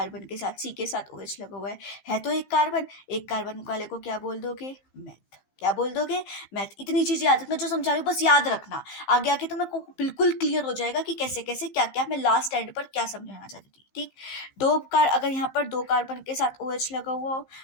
के साथ, C के साथ OH लगा हुआ है तो एक कार्बन वाले को क्या बोल दोगे, मैथ, क्या बोल दोगे, मैथ। इतनी चीज याद रखना, जो समझा रही हूँ बस याद रखना, आगे आके तो मेरे को बिल्कुल क्लियर हो जाएगा कि कैसे कैसे क्या क्या मैं लास्ट एंड पर क्या समझाना चाहती थी, ठीक। अगर यहाँ पर 2 कार्बन के साथ OH लगा हुआ हो,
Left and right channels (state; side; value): late; right; 15 ms